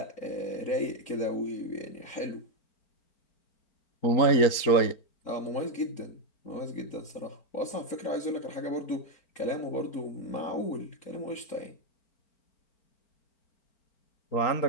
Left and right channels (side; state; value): right; late; 4.4 ms